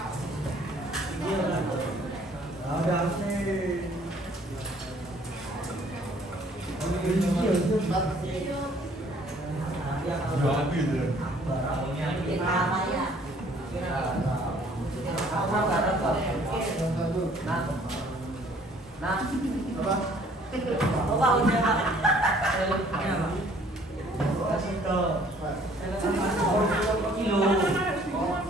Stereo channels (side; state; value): both; normal; correlation 0.58